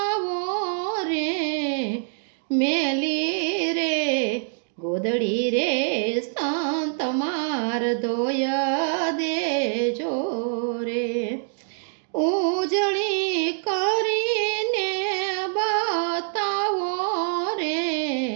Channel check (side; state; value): left; silent; 62 dB below the other